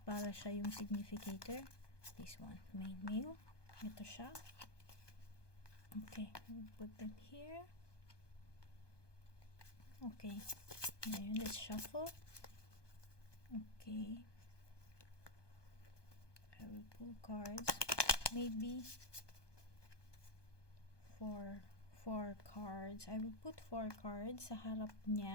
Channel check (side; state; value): right; late; 1.2 ms